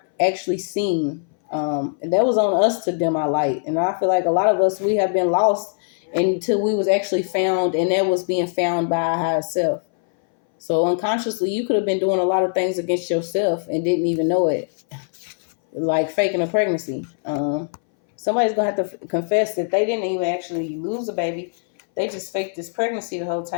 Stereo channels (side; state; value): right; silent; 62 dB below the other